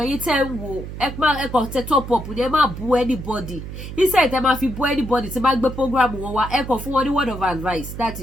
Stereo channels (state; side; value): noise; right; hum, 9 dB below the sound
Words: yín tẹ́ ń wò ẹ kàn tẹ top up ni ẹ má bú anybody. Instead tẹ́ máa fi bú anybody tí bá gbé program wọn wá ẹ kàn fún wọn ní word of advice. That